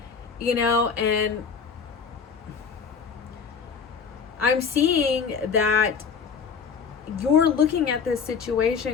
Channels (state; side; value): quieter; right; 6.0 dB